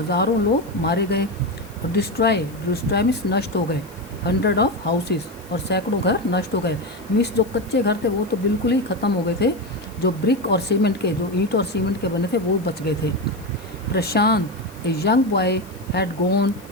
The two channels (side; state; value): left; noise; hiss, 24 dB below the sound